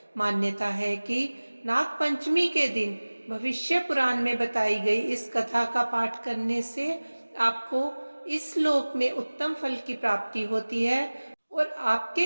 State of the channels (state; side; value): inverted; both; correlation -1.00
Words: मान्यता है कि नाग पंचमी के दिन भविष्य पुराण में बताई गई इस कथा का पाठ करने से आपको इस लोक में उत्तम फल की प्राप्ति होती है और